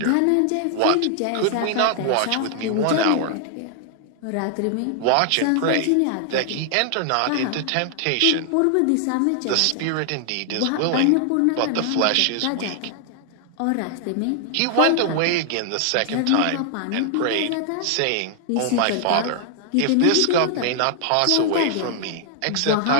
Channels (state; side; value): different; both; correlation 0.00